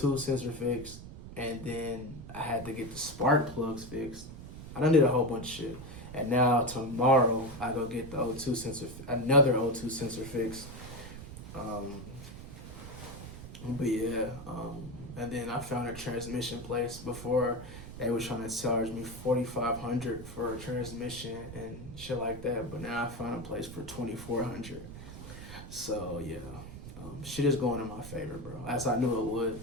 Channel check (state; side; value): noise; right; rumble, 12 dB below the sound